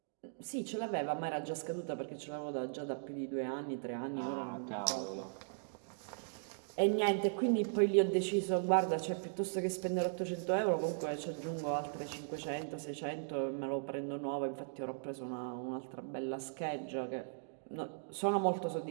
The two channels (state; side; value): silent; left; digital silence